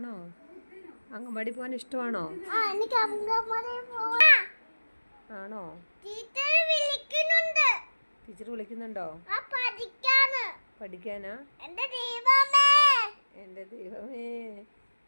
അങ്കമാടി പോകാൻ ഇഷ്ടമാണോ? ആണോ? ടീച്ചർ വിളിക്കുന്നുണ്ടോ? പഠിക്കാനാ? എന്റെ ദൈവമേ,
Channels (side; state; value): both; inverted; correlation -1.00